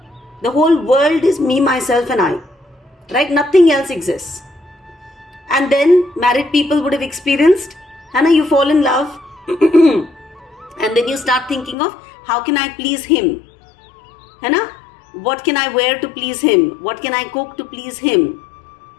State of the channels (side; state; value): right; drops out; at 11.8 s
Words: The whole world is me, myself and I. Right? Nothing else exists. And then married people would have experienced, you fall in love. And then you start thinking of how can I please him? What can I wear to please him? What can I cook to please him?